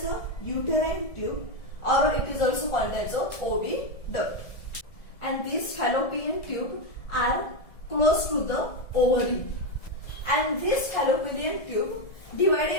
a uterine tube, or it is also called as a oviduct. And these fallopian tube are close to the ovary, and this fallopian tube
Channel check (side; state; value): right; late; 1.7 ms